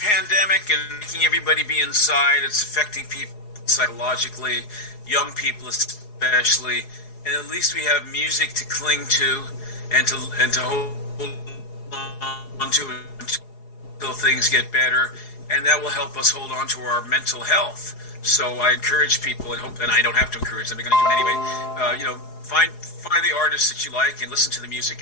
pandemic and making everybody be inside, it's affecting people psychologically, young people especially, and at least we have music to cling to and to hold on to until things get better, and that will help us hold on to our mental health. So I encourage people, and I don't have to encourage them, they're going to do it anyway. Find the artists that you like and listen to the music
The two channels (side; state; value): right; late; 4.8 ms